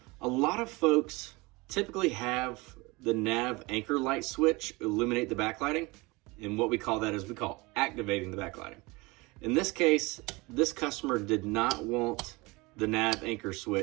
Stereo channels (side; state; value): left; quieter; 24.2 dB